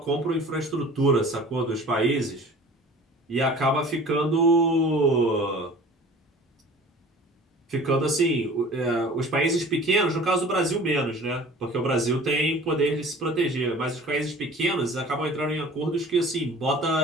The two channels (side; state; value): both; normal; correlation 0.44